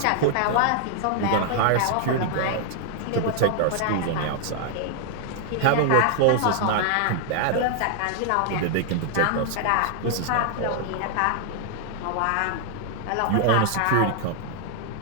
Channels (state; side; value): different; both; correlation 0.00